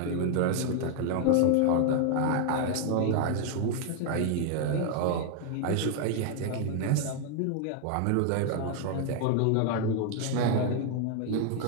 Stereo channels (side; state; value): both; different; correlation 0.00